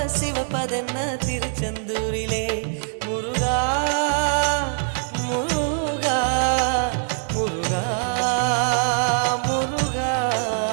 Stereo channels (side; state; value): left; silent; digital silence